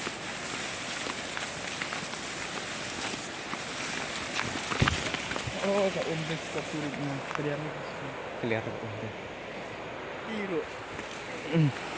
Oh, kak umbek surutnya. Kelihatan. Tiru.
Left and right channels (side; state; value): left; noise; hum, 23 dB below the sound